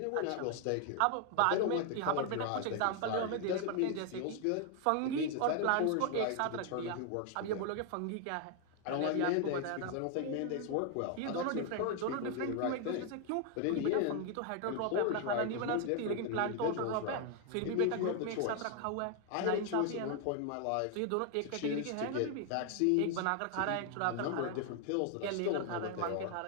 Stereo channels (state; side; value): different; both; correlation 0.00